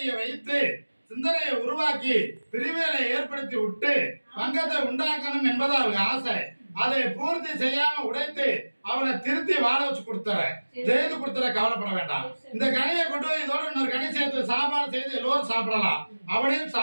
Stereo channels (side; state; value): both; inverted; correlation -1.00